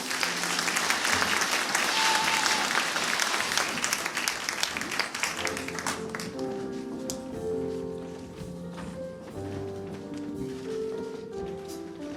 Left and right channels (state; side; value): identical; both; correlation 1.00